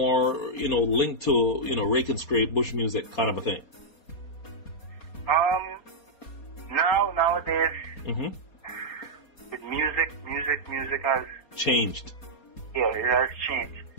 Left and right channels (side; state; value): right; late; 4.2 ms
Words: linked to, rake and scrape, bush music kind of a thing? Nowadays, with music has changed. Yeah, it has changed.